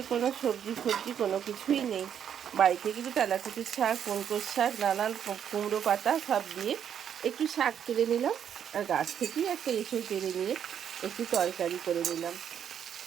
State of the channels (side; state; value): left; quieter; 8.8 dB